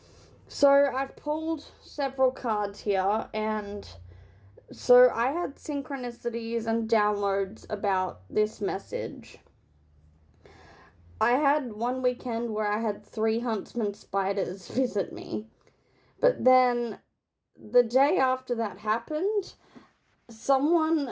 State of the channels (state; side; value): identical; both; correlation 1.00